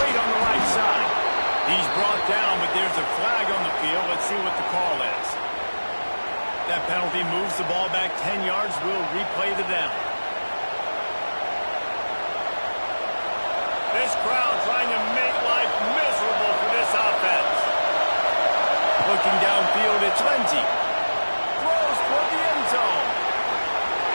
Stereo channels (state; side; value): inverted; both; correlation -1.00